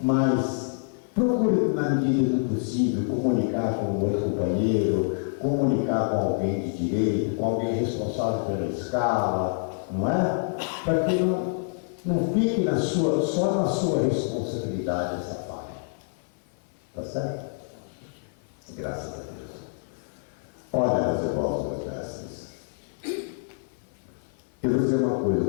procure, na medida do possível, comunicar com o outro companheiro, comunicar com alguém de direito, com alguém responsável pela escala, não é? Para que não fique só na sua responsabilidade essa falha. Tá certo? Graças a Deus. Olha, meus irmãos, meus mestres, eu vou dizer uma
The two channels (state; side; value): silent; right; 56 dB below the other